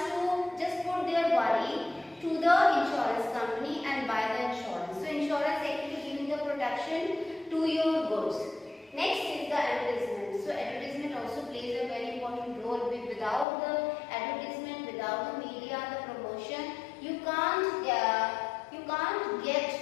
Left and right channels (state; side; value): drops out; right; at 13.5 s